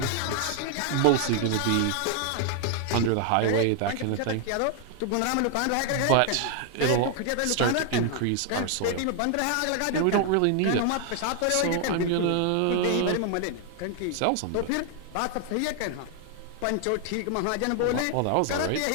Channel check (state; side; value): different; both; correlation 0.00